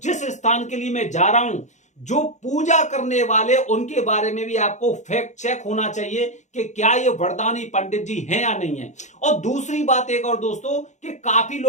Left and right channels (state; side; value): late; right; 0.34 ms